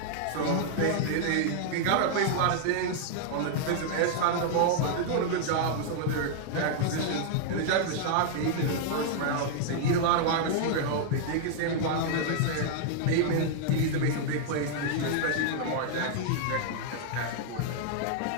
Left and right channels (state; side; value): different; both; correlation -0.01